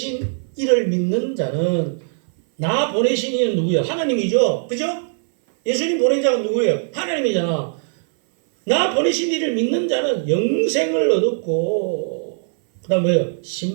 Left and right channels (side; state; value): left; silent; 59 dB below the other